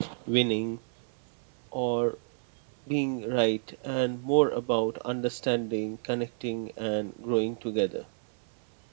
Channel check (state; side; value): silent; left; 58 dB below the other